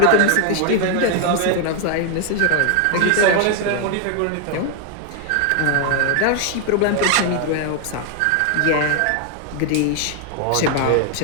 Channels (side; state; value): both; different; correlation 0.00